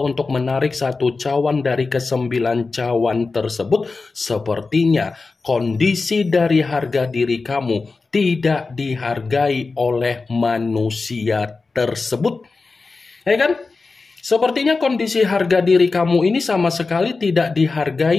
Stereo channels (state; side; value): quieter; right; 4.0 dB